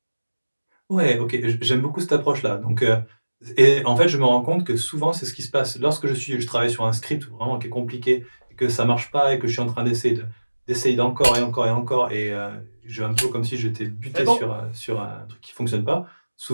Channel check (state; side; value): inverted; both; correlation -1.00